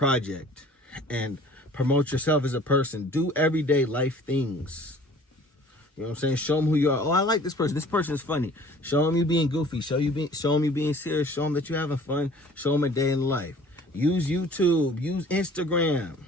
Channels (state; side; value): normal; both; correlation 0.51